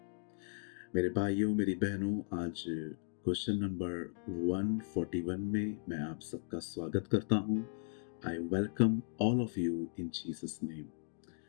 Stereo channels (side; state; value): right; silent; digital silence